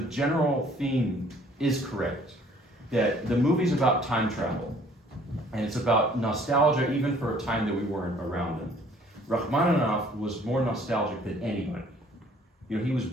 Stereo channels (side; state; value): both; normal; correlation 0.58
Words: general theme is correct. That the movie's about time travel. And it's about nostalgia even for a time that we weren't around in. Rachmaninoff was more nostalgic than anybody. He was